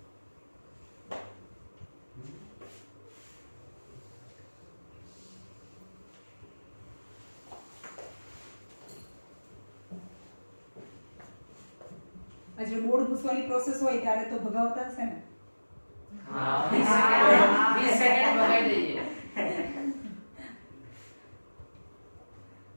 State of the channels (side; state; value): both; inverted; correlation -1.00